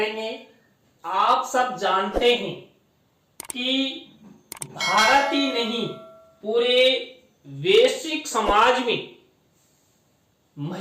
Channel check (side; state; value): both; identical; correlation 1.00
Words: आप सब जानते हैं कि भारत ही नहीं, पूरे वैश्विक समाज में